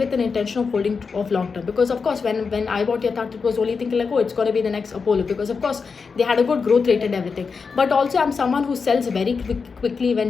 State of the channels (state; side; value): quieter; right; 5.2 dB